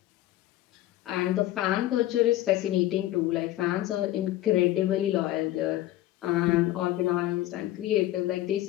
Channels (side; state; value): right; quieter; 14.8 dB